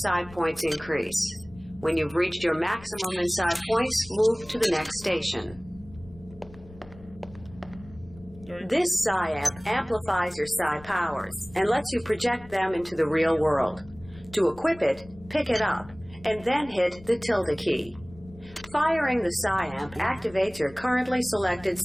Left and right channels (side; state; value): left; noise; rumble, 21 dB below the sound